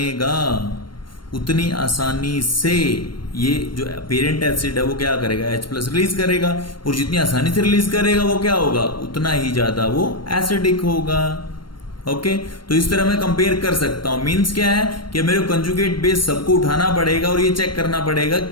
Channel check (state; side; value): late; right; 0.72 ms